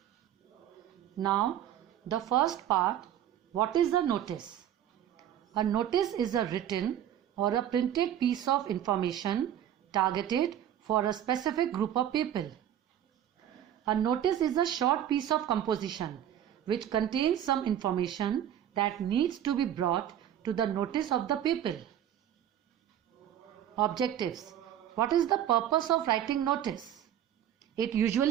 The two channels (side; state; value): left; quieter; 10.7 dB